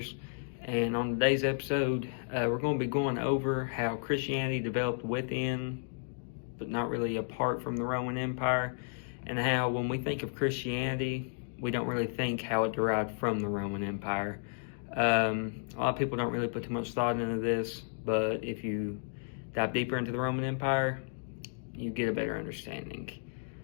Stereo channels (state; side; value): silent; right; digital silence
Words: and on today's episode, we're going to be going over how Christianity developed within, but not really apart from the Roman Empire, and how when we think of Christianity, we don't really think how it derived from the Roman Empire. A lot of people don't really put too much thought into this, but if you dive deeper into the Roman Empire, you get a better understanding.